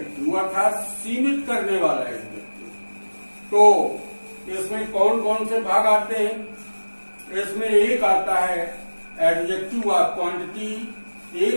अर्थात सीमित करने वाला एडजेक्टिव। तो इसमें कौन कौन से भाग आते हैं? इसमें एक आता है एडजेक्टिव ऑफ क्वांटिटी,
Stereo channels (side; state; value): both; inverted; correlation -1.00